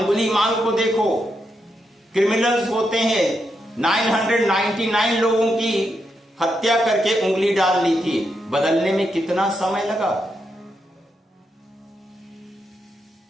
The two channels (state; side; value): normal; both; correlation 0.83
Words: को देखो, क्रिमिनल्स होते हैं। 999 लोगों की हत्या करके उंगली डाल ली थी। बदलने में कितना समय लगा।